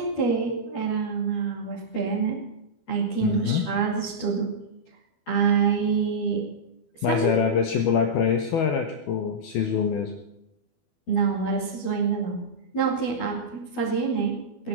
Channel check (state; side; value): late; right; 12 ms